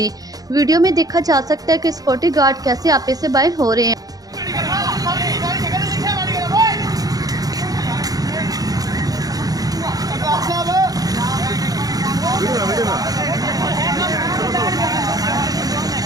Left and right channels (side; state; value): left; late; 0.18 ms